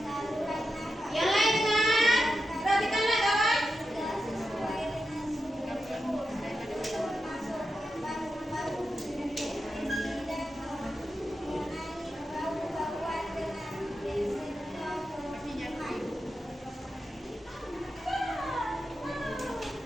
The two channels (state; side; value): normal; both; correlation 0.89